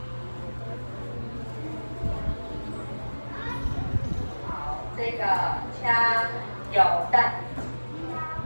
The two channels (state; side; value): inverted; both; correlation -1.00